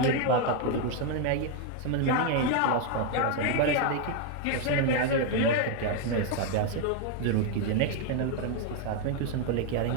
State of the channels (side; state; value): both; different; correlation 0.01